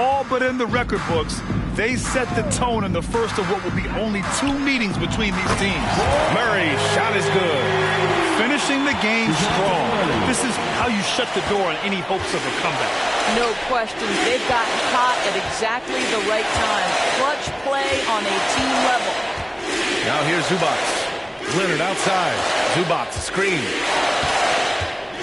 but in the record books, they set the tone in the first of what will be only 2 meetings between these teams. Murray shot is good. Finishing the game strong. This is how you shut the door on any hopes of a comeback. No question. They've gotten hot at exactly the right time. Clutch play on a team level. Now here's Zubac. Leonard outside. Zubac screen.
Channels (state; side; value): identical; both; correlation 1.00